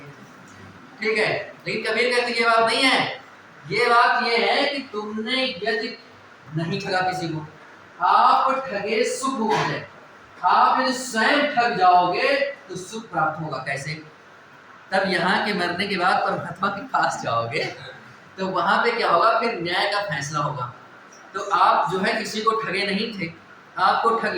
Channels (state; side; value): identical; both; correlation 1.00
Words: ठीक है। लेकिन कबीर कहते ये बात नहीं है। ये बात ये है कि तुमने यदि नहीं ठगा किसी को, आप ठगे सुख हो जाए। आप यदि स्वयं ठग जाओगे तो सुख प्राप्त होगा। कैसे? तब यहाँ के मरने के बाद परमात्मा के पास जाओगे तो वहां पे क्या होगा? फिर न्याय का फैसला होगा। तो आप जो है किसी को ठगे नहीं थे, आपको ठग